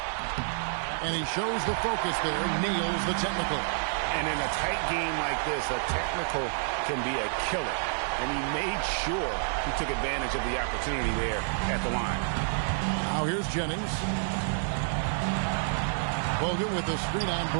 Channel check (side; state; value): left; silent; digital silence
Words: And he shows the focus there, nails the technical. And in a tight game like this, a technical can be a killer. And he made sure he took advantage of the opportunity there at the line. Now here's Jennings. Bogut with the screen on